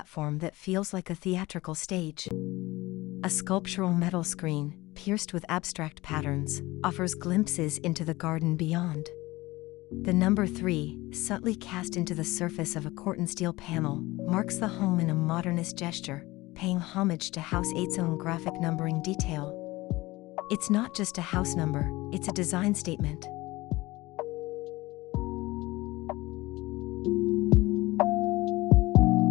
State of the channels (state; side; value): quieter; right; 20.1 dB